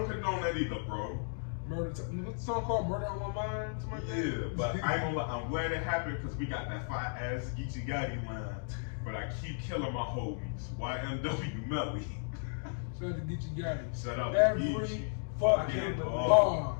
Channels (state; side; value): silent; right; digital silence